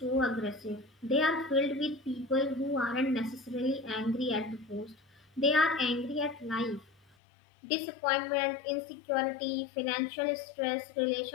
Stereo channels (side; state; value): right; drops out; at 7.2 s